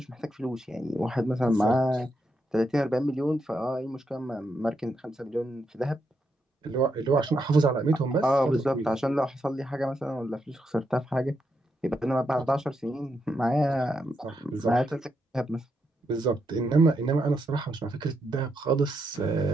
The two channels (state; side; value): normal; both; correlation 0.81